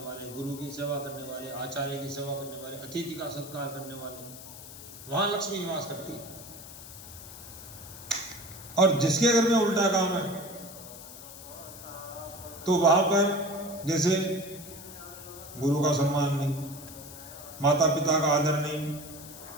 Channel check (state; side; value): noise; left; hiss, 14 dB below the sound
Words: वाले, गुरु की सेवा करने वाले, आचार्य की सेवा करने वाले, अतिथि का सत्कार करने वाले, वहां लक्ष्मी निवास करती है। और जिसके घर में उल्टा काम है तो वहां पर जैसे गुरु का सम्मान नहीं, माता पिता का आदर नहीं,